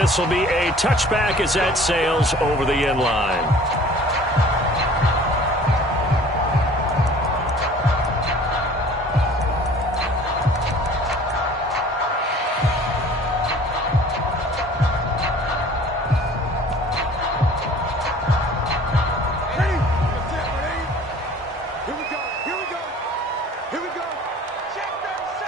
will be a touchback as that sails over the end line.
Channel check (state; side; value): normal; both; correlation 0.48